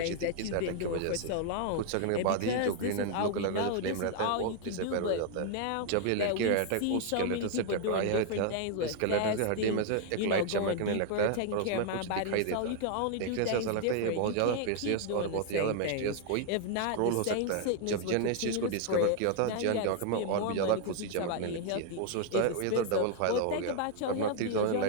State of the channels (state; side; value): different; both; correlation 0.00